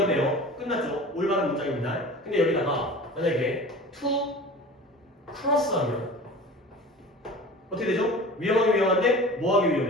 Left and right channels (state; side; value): normal; both; correlation 0.38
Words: 끝났죠. 올바른 문장입니다. 근데 여기다가 만약에 to cross 하면 어떻게 되죠? 위험하기 위험한데 뭐하기